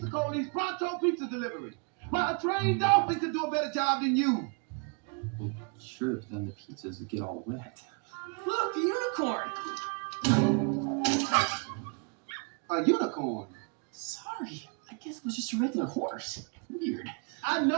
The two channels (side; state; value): left; quieter; 38.9 dB